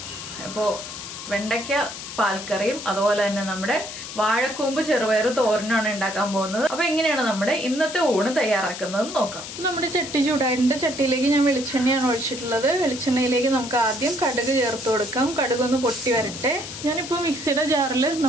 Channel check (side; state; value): left; noise; hiss, 10 dB below the sound